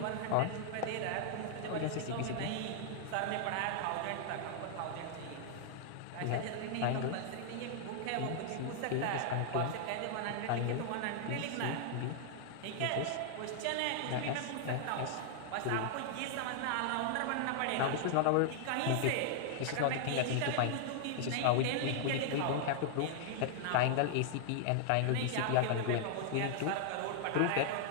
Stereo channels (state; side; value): different; both; correlation -0.01